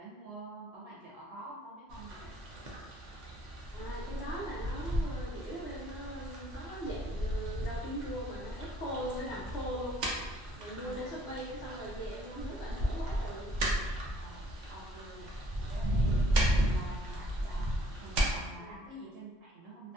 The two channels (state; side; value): normal; both; correlation 0.62